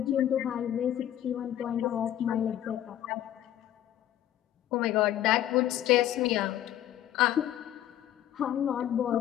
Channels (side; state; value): right; quieter; 12.1 dB